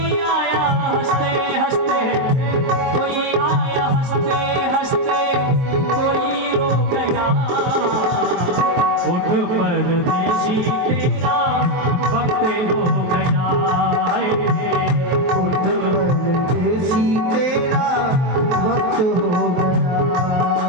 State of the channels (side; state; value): left; late; 23 ms